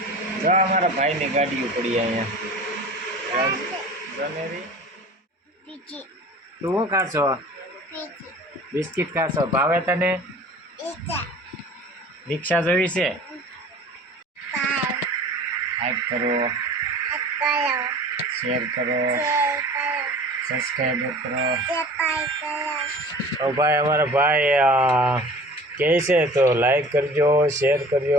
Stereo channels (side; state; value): both; normal; correlation 0.43